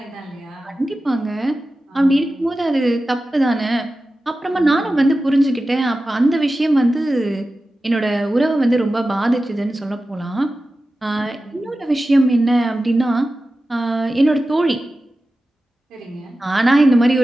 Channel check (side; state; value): both; normal; correlation 0.94